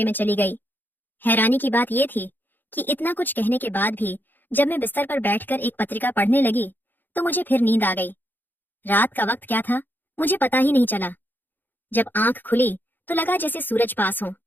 में चली गई। हैरानी की बात यह थी कि इतना कुछ कहने के बाद भी जब मैं बिस्तर पर बैठकर एक पत्रिका पढ़ने लगी तो मुझे फिर नींद आ गई। रात का वक्त क्या था मुझे पता ही नहीं चला। जब आंख खुली तो लगा जैसे सूरज पास हो,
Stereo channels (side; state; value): right; late; 0.091 ms